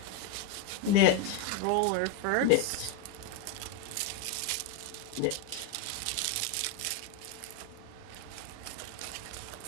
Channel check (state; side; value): different; both; correlation 0.02